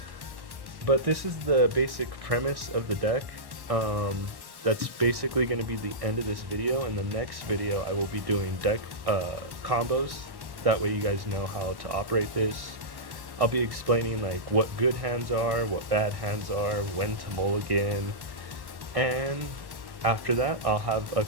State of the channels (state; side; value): late; left; 1.1 ms